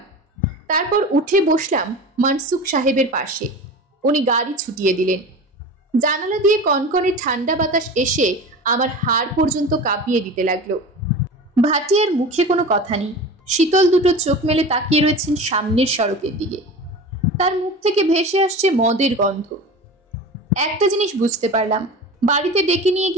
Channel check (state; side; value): normal; both; correlation 0.33